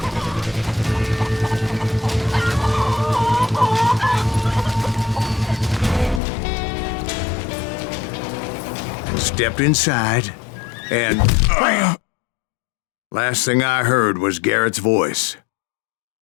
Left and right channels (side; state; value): right; drops out; at 6.2 s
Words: stepped inside, and last thing I heard was Garrett's voice.